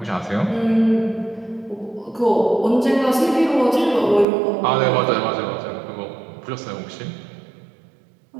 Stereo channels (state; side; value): drops out; left; at 4.2 s